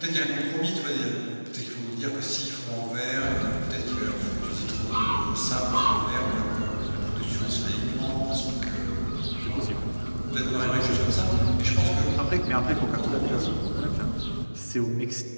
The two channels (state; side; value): inverted; both; correlation -1.00